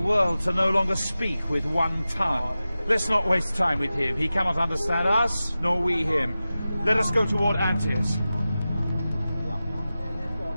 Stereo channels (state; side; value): inverted; both; correlation -0.95